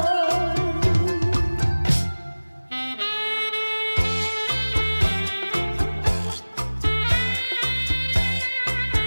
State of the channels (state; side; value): inverted; both; correlation -1.00